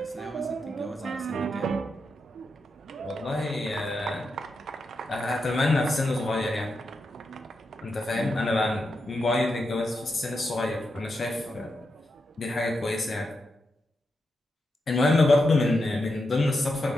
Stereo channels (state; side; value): normal; both; correlation 0.86